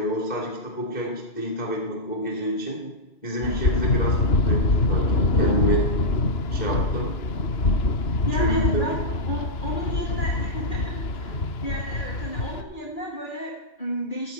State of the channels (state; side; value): late; right; 2.9 ms